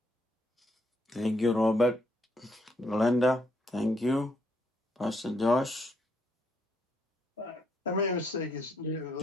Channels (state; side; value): normal; both; correlation 0.73